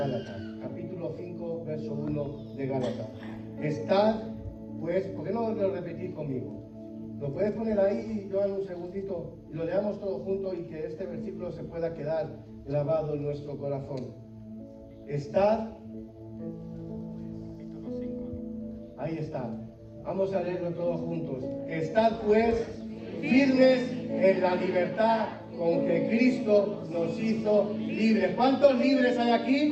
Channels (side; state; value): both; identical; correlation 1.00